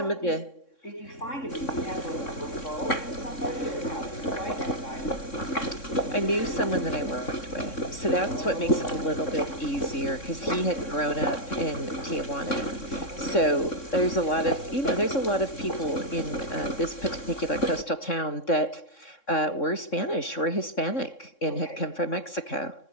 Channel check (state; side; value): late; right; 3.6 ms